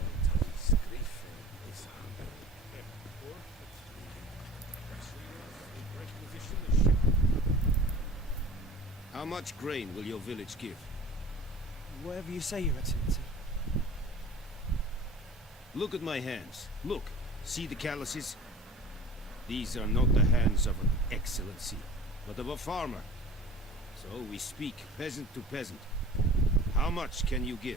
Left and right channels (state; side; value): normal; both; correlation 0.42